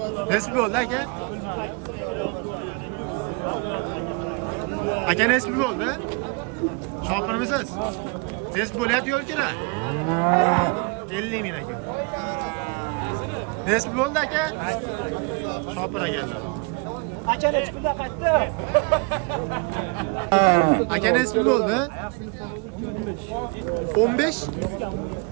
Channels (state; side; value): quieter; left; 31.6 dB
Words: Nech pul bo'ldi aka? Aka nech pul bo'ldi? Shopirmisiz? Nech pul bo'lyapti yo'l kira? 50 ming aka. Nech pul bo'ldi aka? Shopir akalar. Aka nech pulda qaytdi? Aka nech pul bo'ldi? 15?